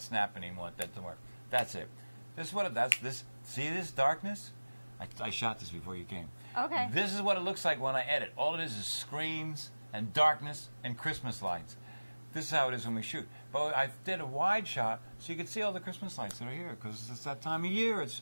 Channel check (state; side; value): inverted; both; correlation -1.00